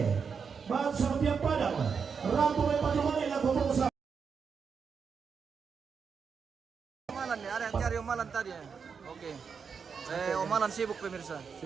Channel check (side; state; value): left; quieter; 6.0 dB